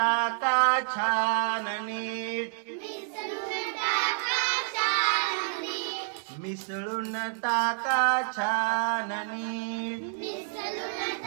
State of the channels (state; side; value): silent; left; digital silence